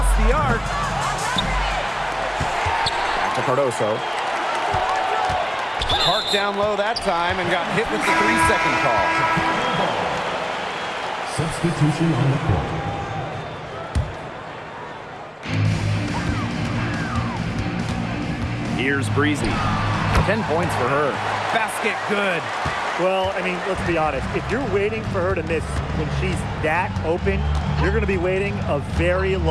the arc. Back to Cardoso. Parked down low that time and got hit with the 3-second call. Substitution on the court. Here's Breezy. 10 points for her. Basket good. Well, I mean, let's be honest. If you're waiting for her to miss when she's that open, you're going to be waiting a very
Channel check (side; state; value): both; identical; correlation 1.00